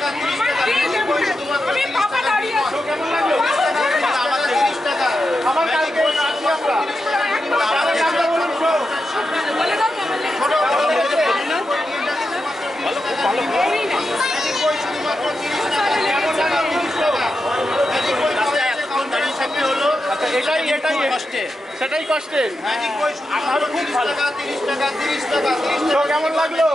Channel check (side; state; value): both; normal; correlation 0.88